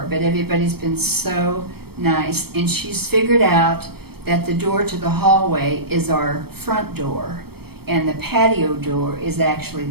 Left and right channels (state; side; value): late; left; 0.96 ms